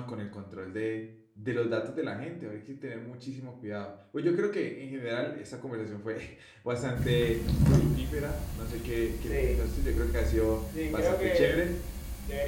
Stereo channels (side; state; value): both; identical; correlation 1.00